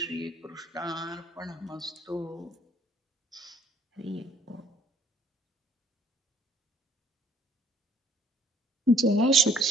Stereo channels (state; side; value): normal; both; correlation 0.61